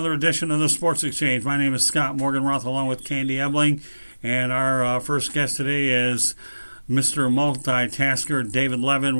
edition of the Sports Exchange. My name is Scott Morganroth along with Candy Ebling, and our first guest today is Mr. Multitasker David Levin.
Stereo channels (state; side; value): inverted; both; correlation -1.00